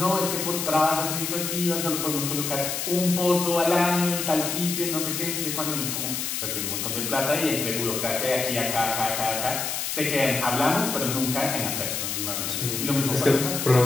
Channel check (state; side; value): noise; left; hiss, 2 dB below the sound